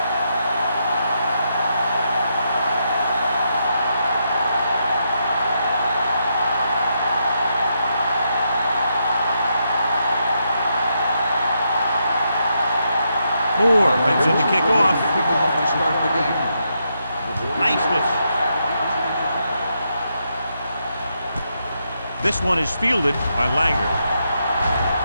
Moore brings in the kickoff. To start the game. Niceness. This one is fielded by Langer.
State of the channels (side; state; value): both; inverted; correlation -0.81